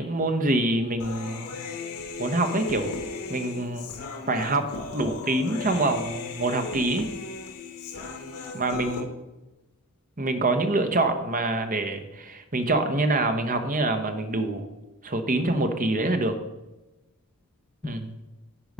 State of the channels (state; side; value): normal; both; correlation 0.34